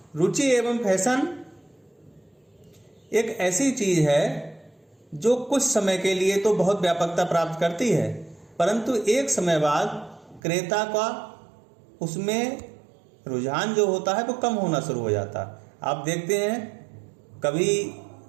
रुचि एवं फैशन एक ऐसी चीज है जो कुछ समय के लिए तो बहुत व्यापकता प्राप्त करती है, परंतु एक समय बाद क्रेता का उसमें रुझान जो होता है वो कम होना शुरू हो जाता है। आप देखते हैं कभी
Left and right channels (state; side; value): drops out; left; at 10.4 s